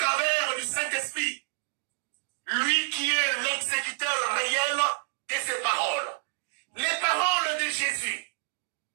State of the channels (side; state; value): left; silent; digital silence